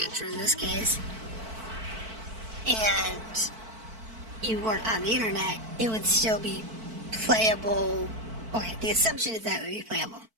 in this case, and you weren't on the internet, it would still be playable. Okay, the assumption is that it would be playable.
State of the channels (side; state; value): left; late; 4.5 ms